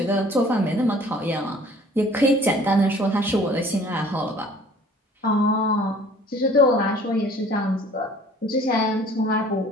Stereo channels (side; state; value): both; normal; correlation 0.52